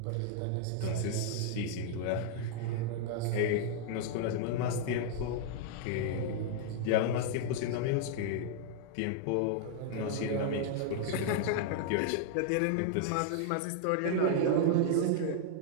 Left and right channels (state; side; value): different; both; correlation -0.01